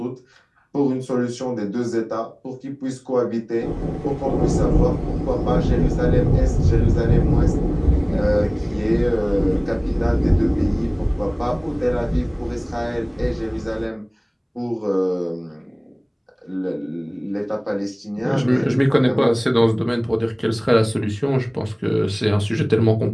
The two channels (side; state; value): both; identical; correlation 1.00